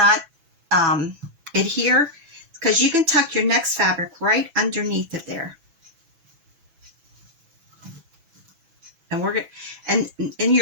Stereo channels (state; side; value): late; left; 6.1 ms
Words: adhere, because you can tuck your next fabric right underneath it there. And we're and